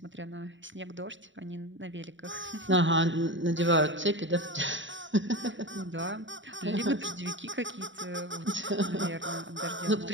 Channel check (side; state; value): left; late; 0.55 ms